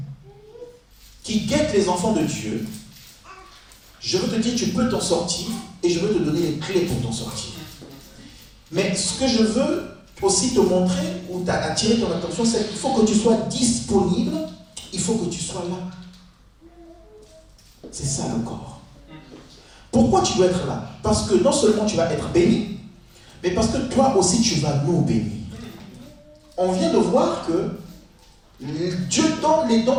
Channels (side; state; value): both; identical; correlation 1.00